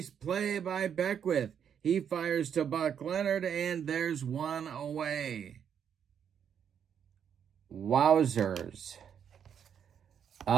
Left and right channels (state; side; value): quieter; left; 8.2 dB